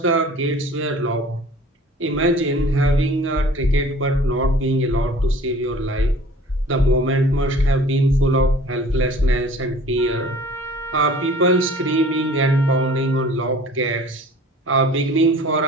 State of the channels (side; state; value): both; normal; correlation 0.48